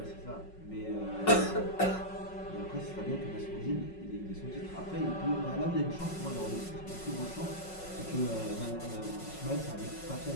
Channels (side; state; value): right; late; 5.4 ms